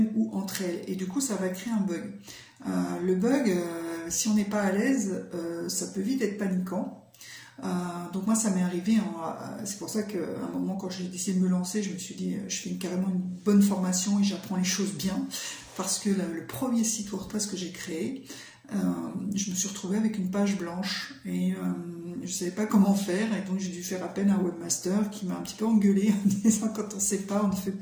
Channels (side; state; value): both; identical; correlation 1.00